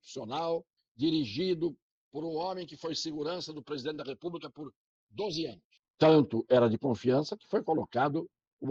dirigido por um homem que foi segurança do presidente da República por 12 anos. Tanto era de confiança que foi colocado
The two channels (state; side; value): identical; both; correlation 1.00